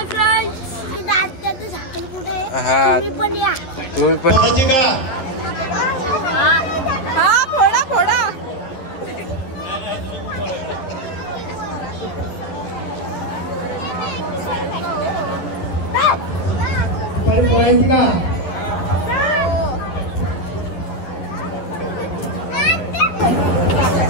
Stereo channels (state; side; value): late; right; 11 ms